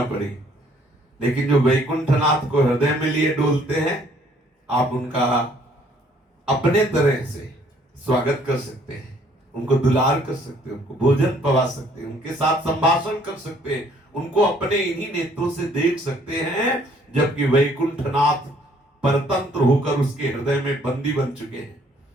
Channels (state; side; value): normal; both; correlation 0.62